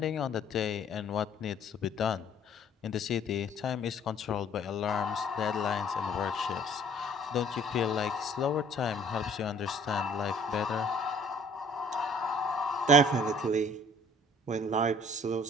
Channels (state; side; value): normal; both; correlation 0.56